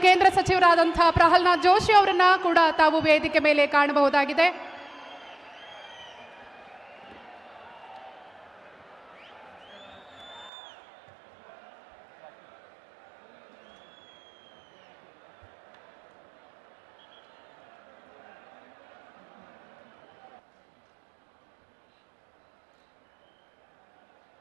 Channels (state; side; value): drops out; left; at 10.5 s